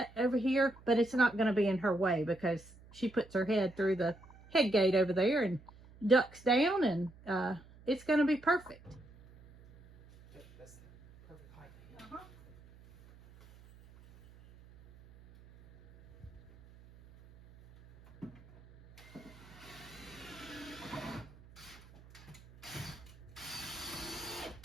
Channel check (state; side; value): noise; right; hum, 23 dB below the sound